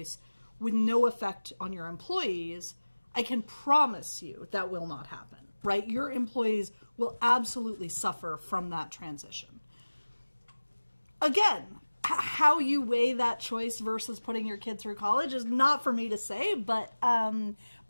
with no effect on your employees, I can promise you that will not happen, right? Your employees will absolutely suffer from that transition. Again, how you weigh that choice versus putting your kid through college is not for me to say, but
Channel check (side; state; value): both; inverted; correlation -1.00